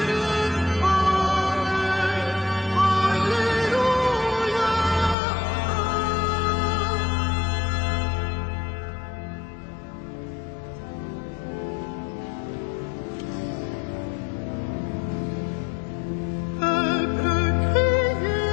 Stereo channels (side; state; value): right; drops out; at 5.2 s